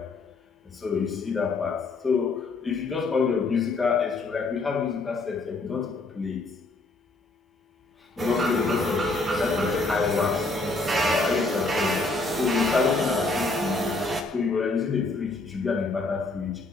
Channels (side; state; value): right; quieter; 3.3 dB